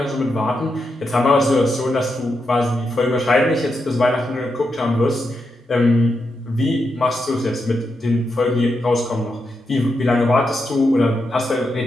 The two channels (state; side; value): normal; both; correlation 0.85